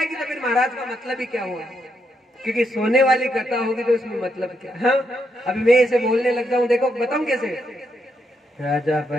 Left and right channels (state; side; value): normal; both; correlation 0.79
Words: तो फिर महाराज का मतलब ही क्या हुआ? क्योंकि सोने वाली कथा होगी तो उसमें मतलब क्या? हाँ, अभी मैं इसे बोलने लग जाऊं, देखो बताऊं कैसे। राजा